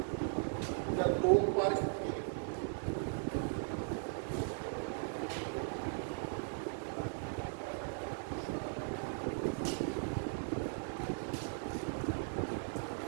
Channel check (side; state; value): left; silent; digital silence